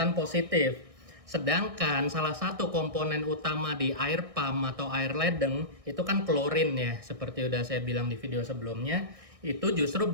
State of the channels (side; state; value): left; late; 1.6 ms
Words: positif. Sedangkan salah satu komponen utama di air pam atau air ledeng itu kan klorin ya, seperti udah saya bilang di video sebelumnya, itu justru